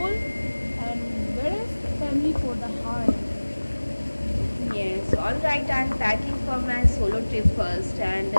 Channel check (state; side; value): inverted; both; correlation -1.00